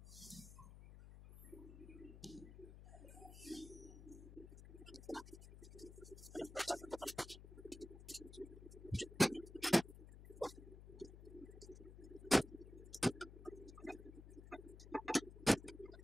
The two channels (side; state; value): left; noise; hum, 14 dB below the sound